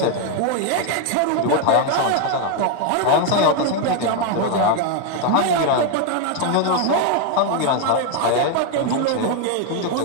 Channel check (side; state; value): both; different; correlation 0.01